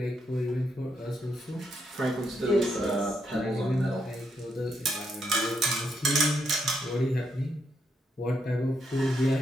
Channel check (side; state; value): both; normal; correlation 0.78